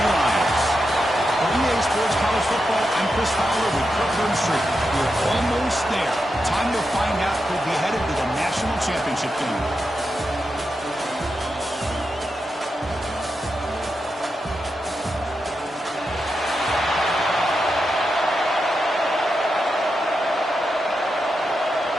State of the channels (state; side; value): normal; both; correlation 0.87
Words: Lions. For EA Sports College Football, I'm Chris Fowler with Kirkland Street. We're almost there. Time to find out who'll be headed to the national championship game.